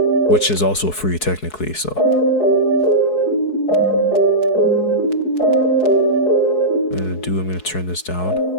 which is also free technically. So I'm gonna turn this down.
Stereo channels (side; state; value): right; late; 4.7 ms